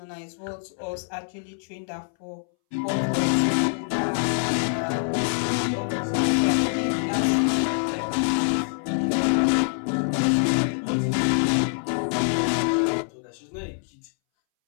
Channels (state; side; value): silent; right; 62 dB below the other